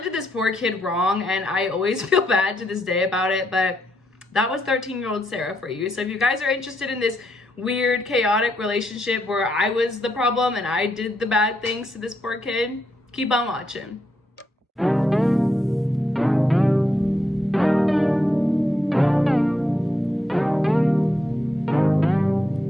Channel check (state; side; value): normal; both; correlation 0.79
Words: did this poor kid wrong, and I always feel bad to this day about it, but that was 13-year-old Sarah for you. So if you guys are interested in this weird, chaotic relationship where I was the problem and I did the bad things to this poor kid, keep on watching.